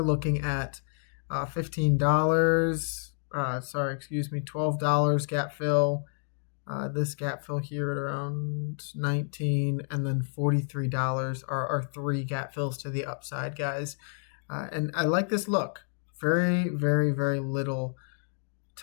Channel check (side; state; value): right; silent; digital silence